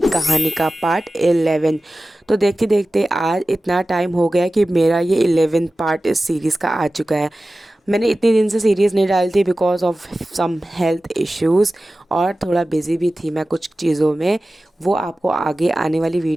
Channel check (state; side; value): normal; both; correlation 0.95